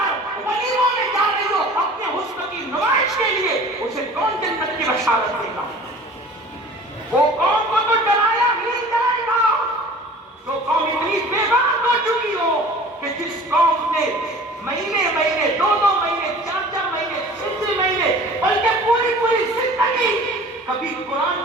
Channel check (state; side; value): normal; both; correlation 0.44